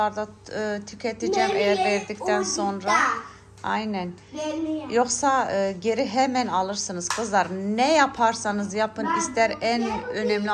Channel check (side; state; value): both; identical; correlation 1.00